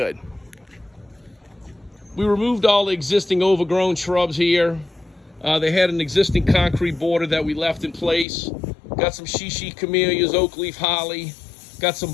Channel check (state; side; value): drops out; right; at 8.2 s